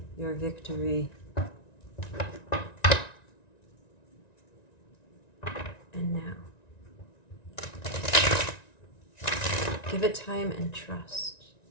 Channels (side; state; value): right; late; 1.9 ms